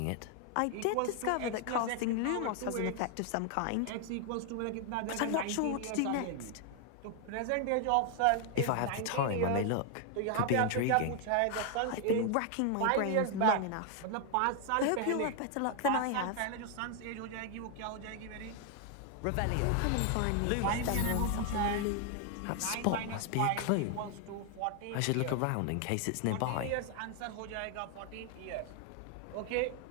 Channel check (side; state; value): both; different; correlation 0.00